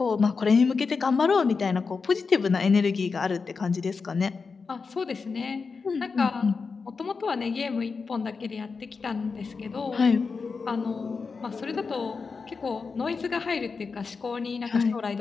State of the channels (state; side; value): quieter; right; 4.8 dB